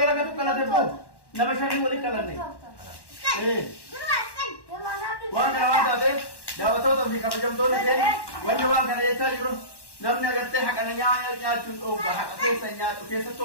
dalagatu qalate boo nama shanii walii qalanne waan kana waan taateef daawwattoota fi kabajamtoonni keenya wanni waan kana jechaa jiru namni agartee haqana nyaachuun dhoogga haqa keessa nyaatu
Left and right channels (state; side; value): late; right; 1.1 ms